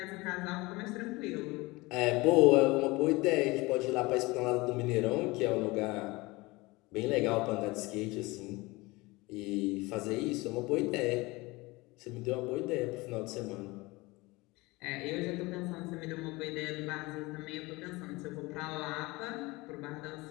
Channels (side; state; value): right; quieter; 22.7 dB